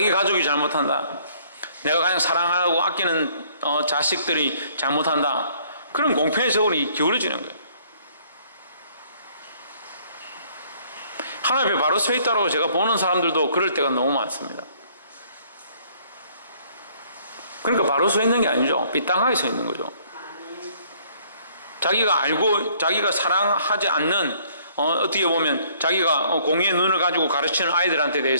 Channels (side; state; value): both; inverted; correlation -0.61